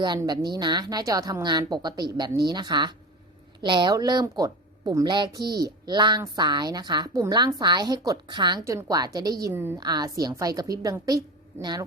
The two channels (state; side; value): normal; both; correlation 0.28